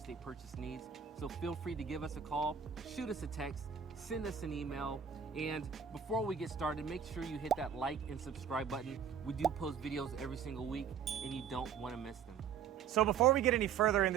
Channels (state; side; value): quieter; left; 7.5 dB